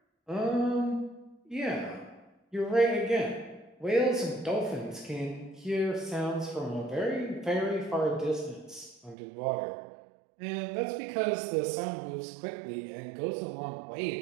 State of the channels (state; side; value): drops out; left; at 9.2 s